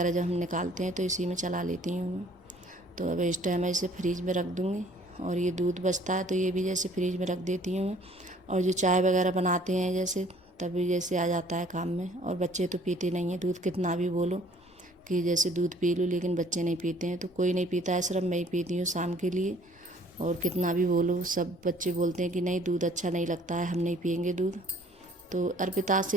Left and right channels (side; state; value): both; normal; correlation 0.56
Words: जब हम निकालते हैं तो इसी में चला लेती हूँ मैं। तो अब इस टाइम मैं इसे फ्रीज में रख दूँगी। और ये दूध बचता है तो ये भी जैसे फ्रीज में रख देती हूँ मैं। और जो चाय वगैरह बनाते हैं जैसे तभी जैसे आ जाता है काम में। और बच्चे तो पीते नहीं हैं दूध, कितना भी बोलो कि जैसे दूध पी लूँ, लेकिन बच्चे नहीं पीते हैं। तो कोई नहीं पीता है, सिर्फ मैं ही पीती हूँ शाम के लिए। और कितना भी बोलो सब बच्चे बोलते हैं कि नहीं दूध अच्छा नहीं लगता है, हम नहीं पियेंगे दूध। तो अर्पिता